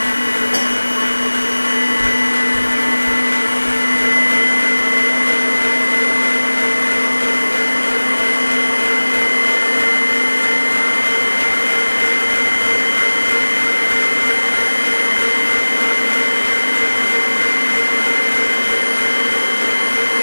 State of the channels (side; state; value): both; inverted; correlation -1.00